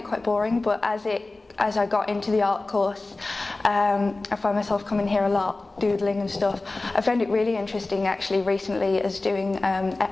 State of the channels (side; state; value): right; quieter; 3.2 dB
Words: quite boring, but as I got into the art course, I found myself coming here a lot, doodling and stuff. I found it really interesting actually recently as doing